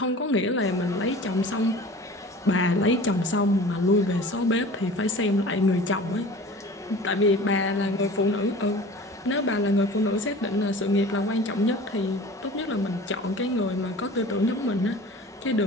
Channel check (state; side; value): normal; both; correlation 0.41